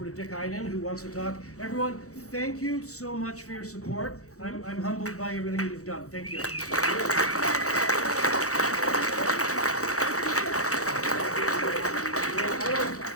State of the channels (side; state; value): right; late; 0.65 ms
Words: to Dick Iden, who wants to talk. Everyone, thank you so much for your support. I'm humbled by everything that you've done. Thank you.